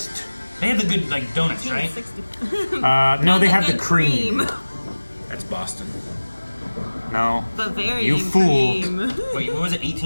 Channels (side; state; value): both; inverted; correlation -1.00